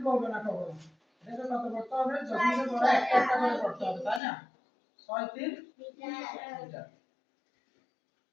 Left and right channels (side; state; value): right; drops out; at 4.2 s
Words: বলবে না কখনো। এটা কত করতে হবে? দশমিকের পরে একটা একটা করে করতে হবে, তাই না? 63 লিটার।